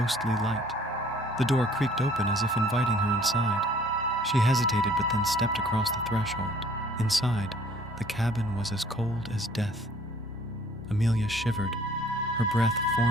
light. The door creaked open as if inviting her inside. She hesitated but then stepped across the threshold. Inside, the cabin was as cold as death. Amelia shivered, her breath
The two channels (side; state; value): both; normal; correlation 0.56